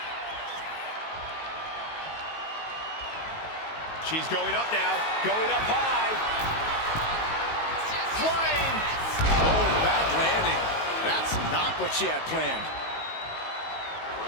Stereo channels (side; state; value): right; late; 19 ms